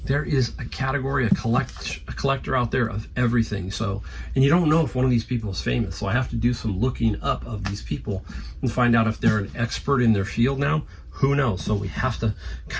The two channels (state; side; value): identical; both; correlation 1.00